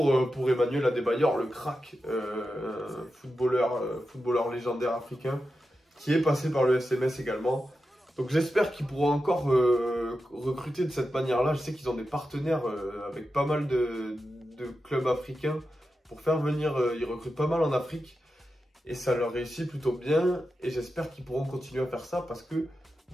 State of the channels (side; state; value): both; normal; correlation 0.90